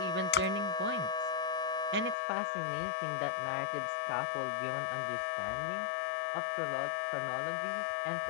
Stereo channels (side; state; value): right; drops out; at 2.1 s